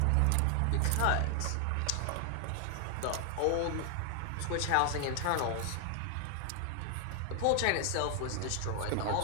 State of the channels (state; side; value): different; both; correlation 0.00